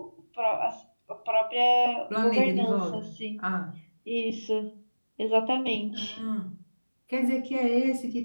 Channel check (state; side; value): inverted; both; correlation -1.00